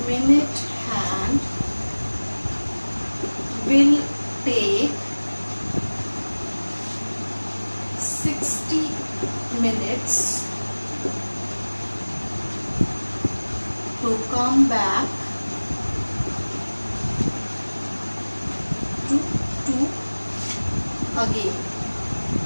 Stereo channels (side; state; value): both; inverted; correlation -1.00